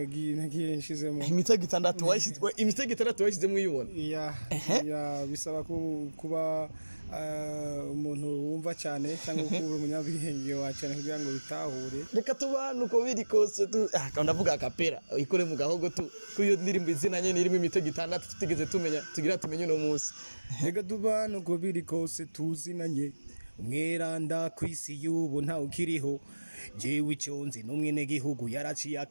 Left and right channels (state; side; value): inverted; both; correlation -1.00